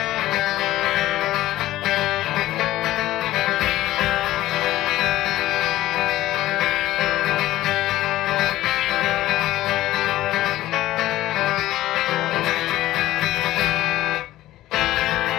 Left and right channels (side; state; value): right; quieter; 15.3 dB